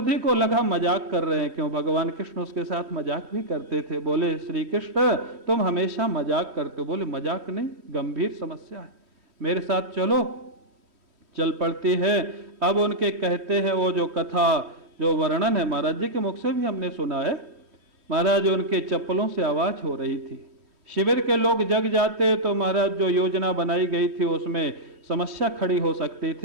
को लगा मजाक कर रहे हैं, क्यों भगवान कृष्ण उसके साथ मजाक भी करते थे। बोले श्री कृष्ण तुम हमेशा मजाक करते हो। बोले मजाक नहीं, गंभीर समस्या है, मेरे साथ चलो। चल पड़ती है। अब उनके कहते हैं वो जो कथा, जो वर्णन है महाराज जी के मुख से भी हमने सुना है। महाराज उनके चप्पलों से आवाज हो रही थी। शिविर के लोग जग जाते तो महाराज जो योजना बनाई गई थी उसमें समस्या खड़ी हो सकती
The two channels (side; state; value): left; late; 3.1 ms